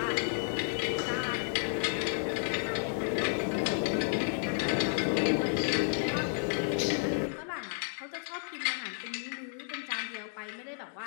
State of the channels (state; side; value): silent; right; digital silence